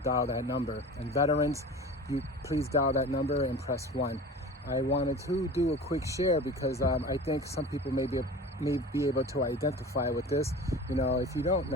that number. And veterans, you please dial that number and press 1. I wanted to do a quick share because I think some people may be able to identify with this. You know, if you don't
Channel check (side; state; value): both; normal; correlation 0.37